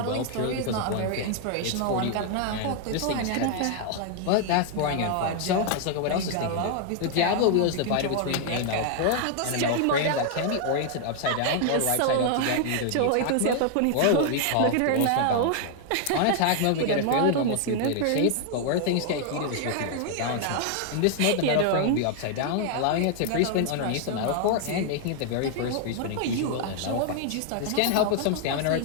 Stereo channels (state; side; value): different; both; correlation 0.00